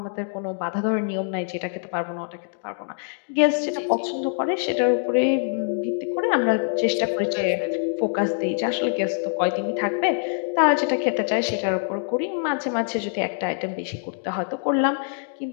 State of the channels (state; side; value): silent; right; 61 dB below the other